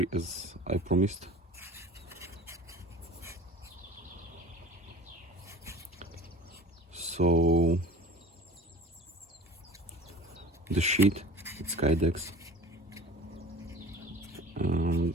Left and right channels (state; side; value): normal; both; correlation 0.41